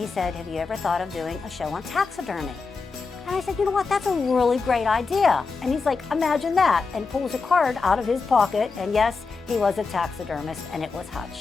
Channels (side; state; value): right; quieter; 4.5 dB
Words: said, have you ever thought of doing a show on taxidermy? And I said, you know what, that's a really great idea. And he's like, imagine that, and pulls a card out of his pocket, and yes, he was a taxidermist, and it was